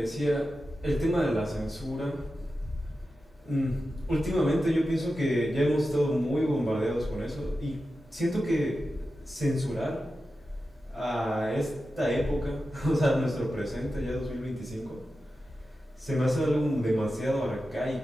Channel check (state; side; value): normal; both; correlation 0.92